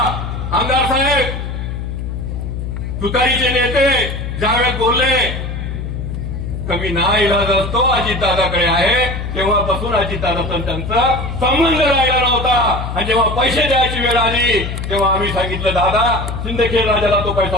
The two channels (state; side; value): noise; left; hum, 5 dB below the sound